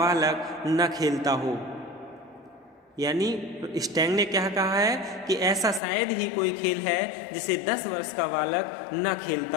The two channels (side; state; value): right; drops out; at 5.8 s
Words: न खेलता हो। यानी स्टैंग ने क्या कहा है कि ऐसा शायद ही कोई खेल है जिसे 10 वर्ष का बालक न